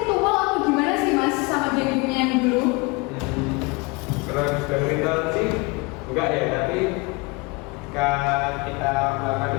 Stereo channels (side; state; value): right; quieter; 26.9 dB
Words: atau gimana sih mas sama gengnya yang dulu? Kalau dari ritual sih enggak ya, tapi ketika kita